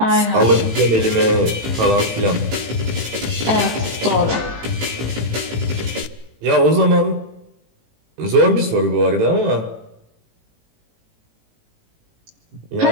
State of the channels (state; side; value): late; left; 18 ms